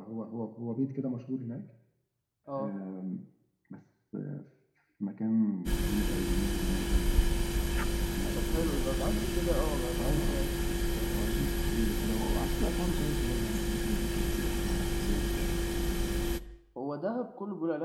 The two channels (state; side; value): identical; both; correlation 1.00